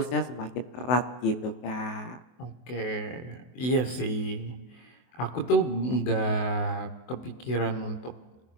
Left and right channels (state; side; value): late; right; 24 ms